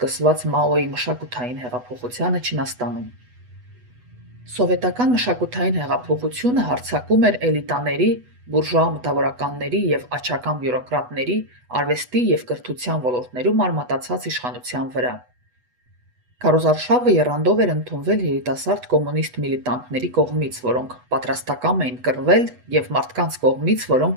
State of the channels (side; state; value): left; late; 8.1 ms